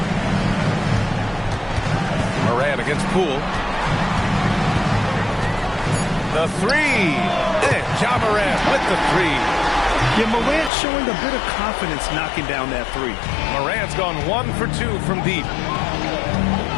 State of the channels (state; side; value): drops out; right; at 10.7 s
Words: Morant against Poole. The three. And Ja Morant with the three. Yeah, Morant showing a bit of confidence knocking down that three. Morant's gone 1 for 2 from deep.